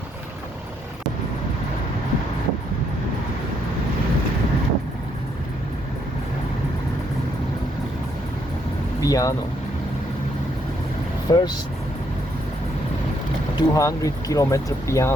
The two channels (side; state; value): both; normal; correlation 0.73